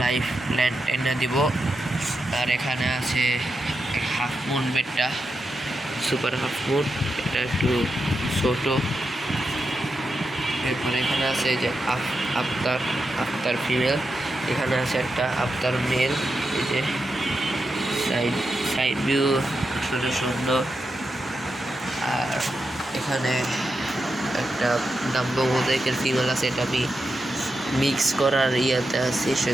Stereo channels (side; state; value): both; normal; correlation 0.87